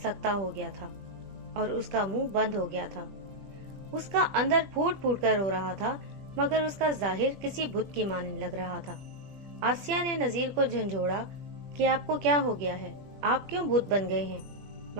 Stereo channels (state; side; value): late; left; 20 ms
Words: ہو گیا تھا اور اس کا منہ بند ہو گیا تھا، اس کا اندر پھوٹ پھوٹ کر رو رہا تھا مگر اس کا ظاہر کسی بت کی مانند لگ رہا تھا۔ آسیہ نے نذیر کو جھنجھوڑا کہ آپ کو کیا ہو گیا ہے، آپ کیوں بت بن گئے ہیں؟